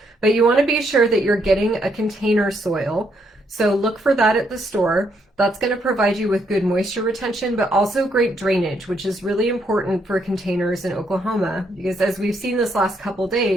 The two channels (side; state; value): both; normal; correlation 0.74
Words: But you want to be sure that you're getting a container soil. So look for that at the store. That's going to provide you with good moisture retention, but also great drainage, which is really important for containers in Oklahoma. Because as we've seen this last couple